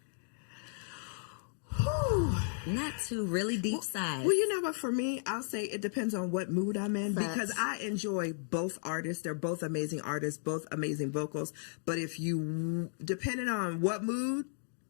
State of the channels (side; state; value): right; silent; digital silence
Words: Not two really deep sides. Well, you know what? For me, I'll say it depends on what mood I'm in because I enjoy both artists. They're both amazing artists, both amazing vocals. But if you, depending on what mood,